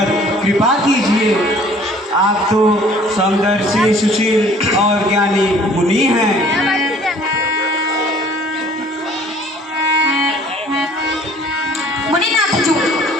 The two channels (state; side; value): normal; both; correlation 0.54